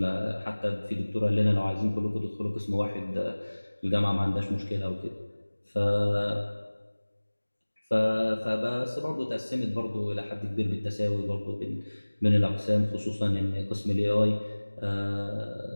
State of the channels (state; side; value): inverted; both; correlation -1.00